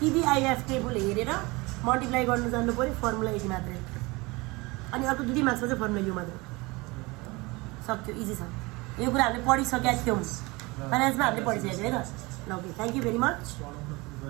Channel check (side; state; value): left; quieter; 24.1 dB